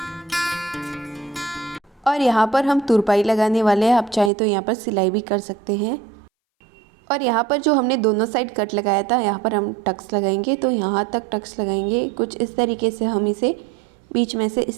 और यहाँ पर हम तुरपाई लगाने वाले हैं। आप चाहें तो यहाँ पर सिलाई भी कर सकते हैं। और यहाँ पर जो हमने दोनों साइड कट लगाया था यहाँ पर हम टक्स लगाएंगे। तो यहाँ तक टक्स लगाएंगे। कुछ इस तरीके से हम इसे बीच में से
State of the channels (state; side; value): drops out; left; at 4.3 s